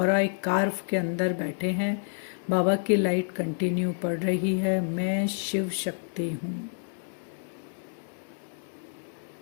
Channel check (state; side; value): silent; right; digital silence